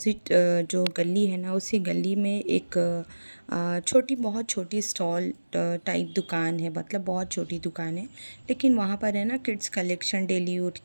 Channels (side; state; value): both; inverted; correlation -1.00